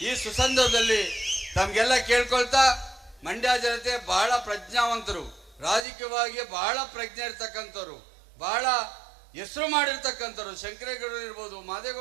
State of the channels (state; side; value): drops out; left; at 5.9 s